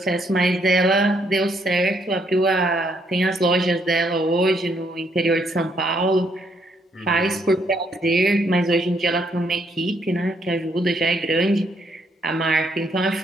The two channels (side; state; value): both; normal; correlation 0.72